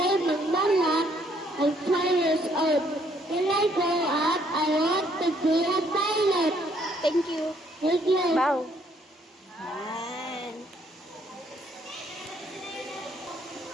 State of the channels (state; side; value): normal; both; correlation 0.67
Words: McDonald. I'm 12 years old. When I grow up, I want to be a pilot. Thank you. Thank you. Bow. Yan.